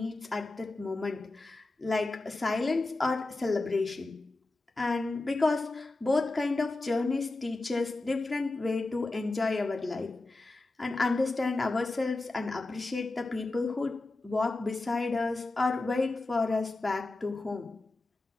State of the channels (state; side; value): quieter; right; 3.1 dB